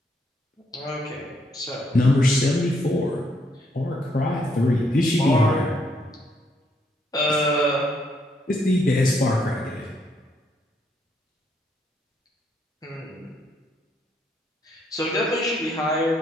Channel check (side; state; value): both; normal; correlation 0.73